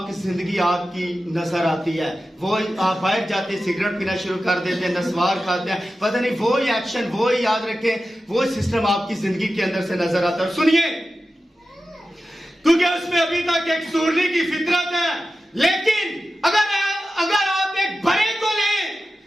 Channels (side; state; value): both; normal; correlation 0.93